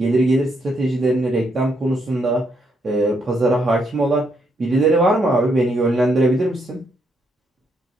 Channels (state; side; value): normal; both; correlation 0.76